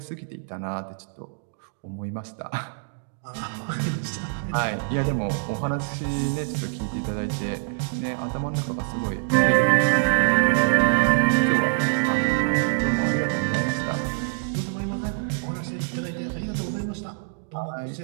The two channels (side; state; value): left; silent; digital silence